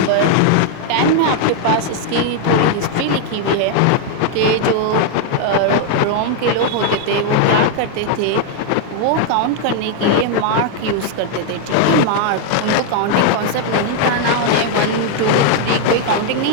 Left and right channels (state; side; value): different; both; correlation 0.00